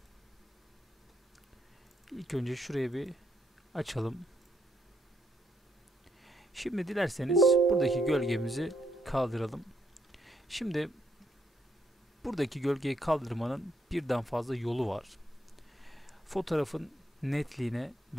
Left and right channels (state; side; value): normal; both; correlation 0.75